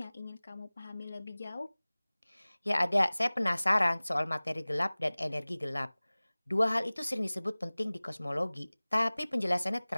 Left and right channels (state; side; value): inverted; both; correlation -0.99